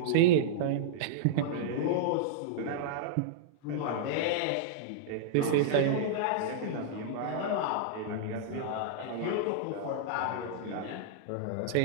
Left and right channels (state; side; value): different; both; correlation -0.02